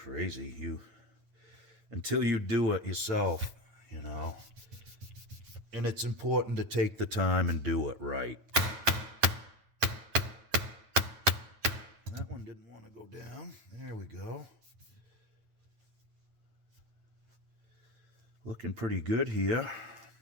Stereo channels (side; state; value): left; late; 9.2 ms